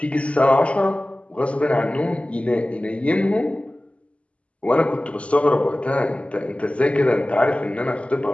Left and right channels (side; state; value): right; late; 0.061 ms